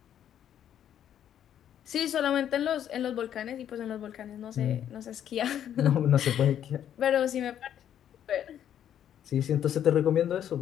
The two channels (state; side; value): quieter; right; 10.1 dB